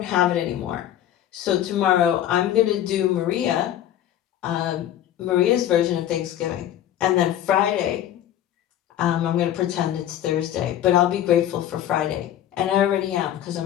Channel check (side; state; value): right; quieter; 11.6 dB